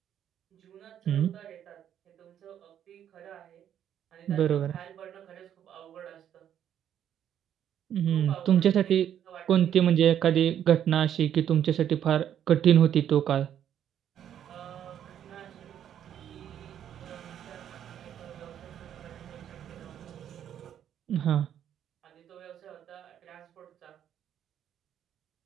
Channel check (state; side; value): quieter; left; 9.9 dB